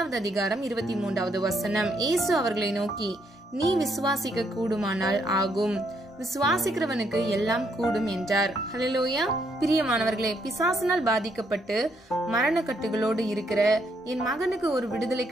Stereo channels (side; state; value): both; normal; correlation 0.73